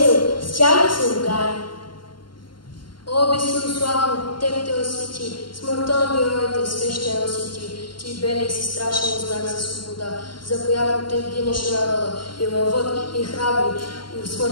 с тях да се ругае. О, безсилославно, теб те освети, смъртта на героите свещено си ти. Ти белех си страшен знак за свобода, за която те гинеше народа, и лъвът, и храбри, и в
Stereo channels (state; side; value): late; right; 0.72 ms